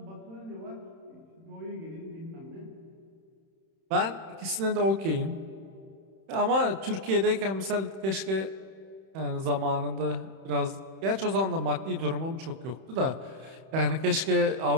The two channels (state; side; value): late; left; 31 ms